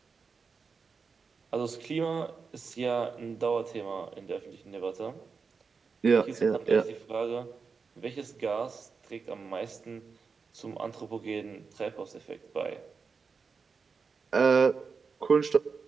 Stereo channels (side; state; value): left; quieter; 5.1 dB